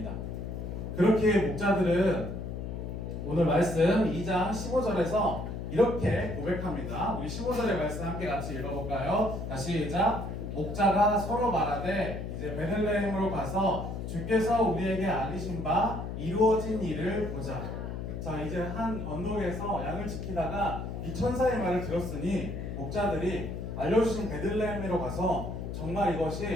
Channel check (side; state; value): left; noise; hum, 6 dB below the sound